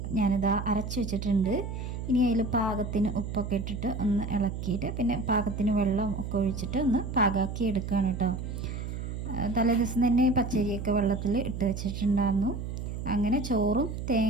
ഞാനിതാ അരച്ച് വെച്ചിട്ടുണ്ട്. ഇനി അതിൽ പാകത്തിന് ഉപ്പൊക്കെ ഇട്ടിട്ട് ഒന്ന് ഇളക്കിയിട്ട് പിന്നെ പാകത്തിന് വെള്ളം ഒക്കെ ഒഴിച്ചിട്ട് ഒന്ന് പാകാക്കി എടുക്കുകയാണ് കേട്ടോ. തലേദിവസം തന്നെ പച്ചരിയൊക്കെ വെള്ളത്തിൽ ഇട്ട് വെച്ചിട്ടുണ്ടായിരുന്നു. അങ്ങനെ ചോറും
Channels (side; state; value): right; noise; hum, 6 dB below the sound